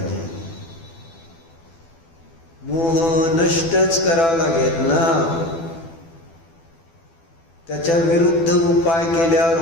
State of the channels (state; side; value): late; right; 12 ms